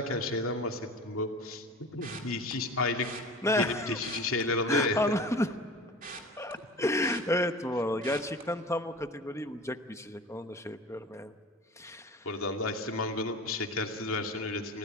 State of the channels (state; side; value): normal; both; correlation 0.36